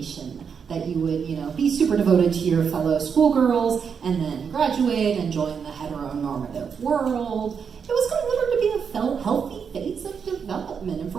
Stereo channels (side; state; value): left; quieter; 6.6 dB